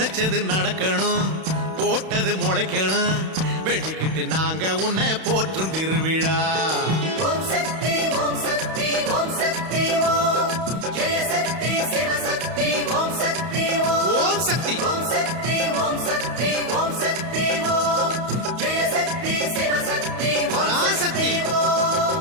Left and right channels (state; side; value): late; left; 32 ms